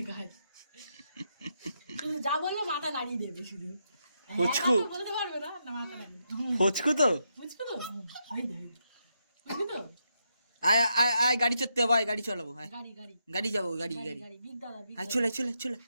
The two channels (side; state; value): both; inverted; correlation -0.81